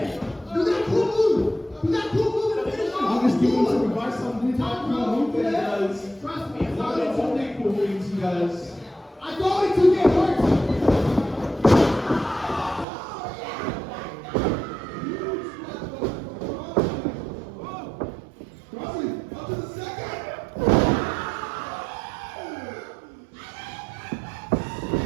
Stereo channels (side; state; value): left; drops out; at 12.9 s